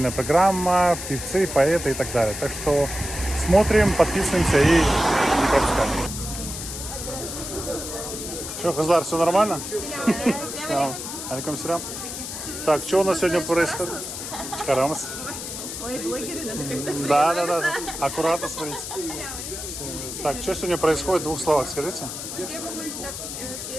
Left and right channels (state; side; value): noise; left; hiss, 7 dB below the sound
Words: программа, певцы, поэты и так далее. Так что смотрим, подписываемся и не пропускаем. Что, Хазлар, все нормально? Алейкум сирам. Так, что у нас сегодня происходит? Чхарамас. Ой, блогеры, надо когда-то. Да. Аккуратно смотрите. Так, что сегодня происходит в двух словах, скажите? Я могу